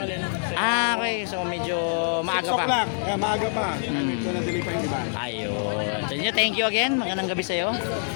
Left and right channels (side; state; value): right; silent; digital silence